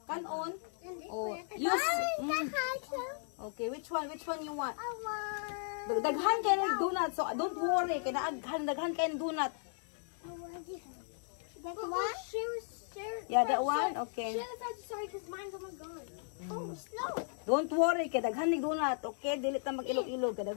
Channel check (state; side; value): silent; right; 54 dB below the other